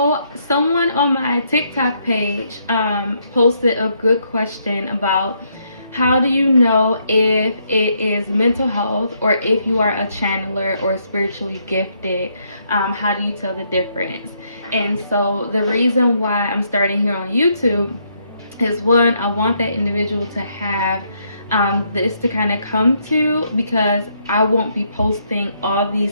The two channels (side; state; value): both; inverted; correlation -0.73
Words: someone on my TikTok page posted a good question about how do you know if it is mental health or if you are a channeler or spiritually gifted? How do you tell the difference? And so the reason why I'm starting here on YouTube is one, I want that individual to have this to kind of come to, because I won't be posting all